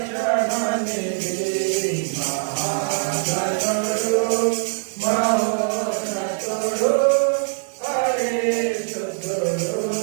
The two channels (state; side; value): silent; left; 63 dB below the other